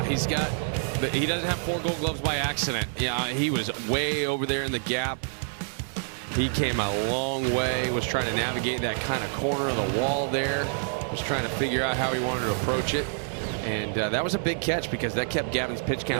he doesn't have 4 Gold Gloves by accident. Yeah, he was way over there in the gap. He came a long way, was trying to navigate that kind of corner of the wall there, was trying to figure out how he wanted to approach it. And that was a big catch because that kept Gavin's pitch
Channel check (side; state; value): left; silent; 60 dB below the other